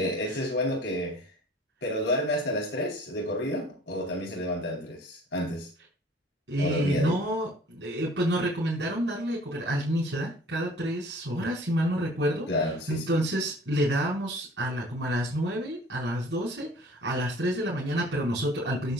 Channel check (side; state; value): both; normal; correlation 0.49